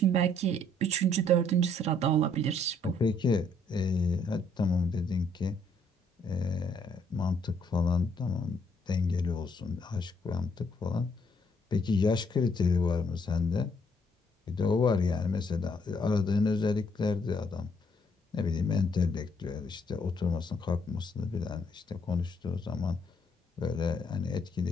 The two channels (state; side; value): normal; both; correlation 0.68